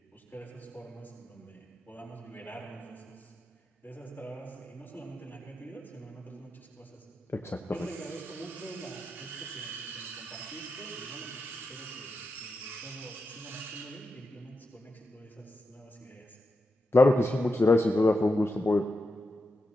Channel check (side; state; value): both; normal; correlation 0.88